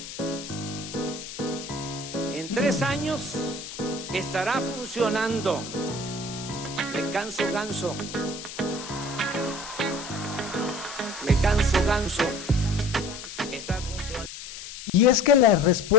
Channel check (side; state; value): left; noise; hiss, 11 dB below the sound